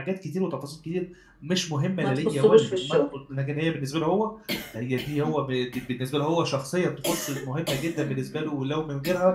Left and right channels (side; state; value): both; identical; correlation 1.00